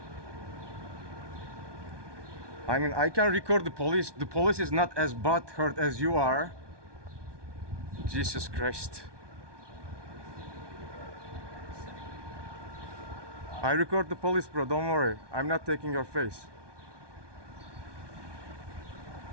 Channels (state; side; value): late; left; 1.2 ms